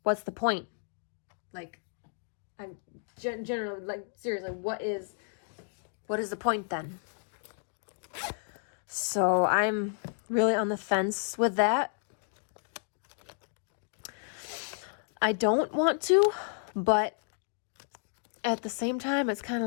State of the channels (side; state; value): right; silent; digital silence